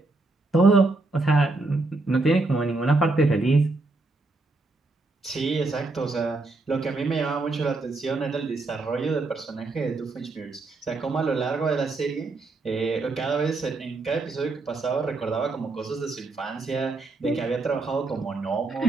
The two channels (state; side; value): quieter; left; 3.4 dB